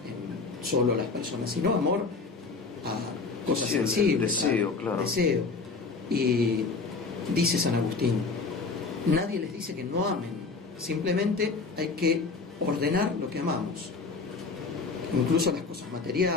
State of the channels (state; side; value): quieter; right; 4.3 dB